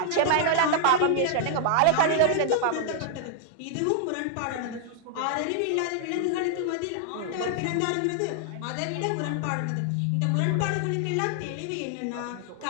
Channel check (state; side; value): different; both; correlation 0.00